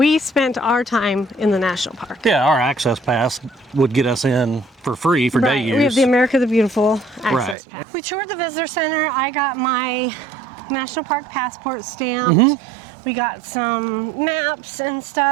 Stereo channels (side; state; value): left; drops out; at 7.6 s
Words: spent our time in the national park. Yeah, our access pass would get us in for free for day use. We have the America the Beautiful access Right. pass. We toured the visitor center. I got my national park passport stamped. We got some maps and